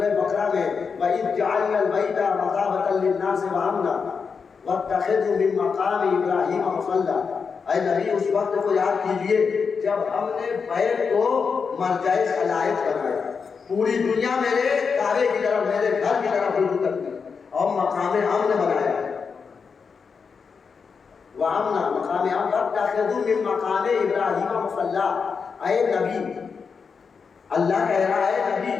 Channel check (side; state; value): right; quieter; 5.6 dB